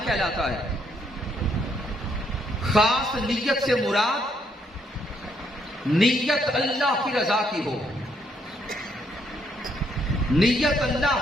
کہلاتا ہے۔ خاص نیت سے مراد نیت اللہ کی رضا کی ہو، نیت اللہ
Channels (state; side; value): normal; both; correlation 0.72